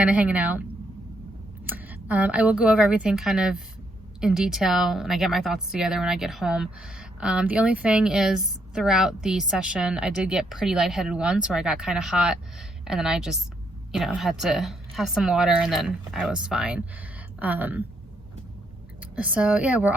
of hanging out. I will go over everything kind of in detail and I get my thoughts together when I get home. The only thing is throughout the session, I did get pretty lightheaded once where I got kind of hot and then I just, had to have some water and then I was fine. So yeah, we're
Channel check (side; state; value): both; normal; correlation 0.75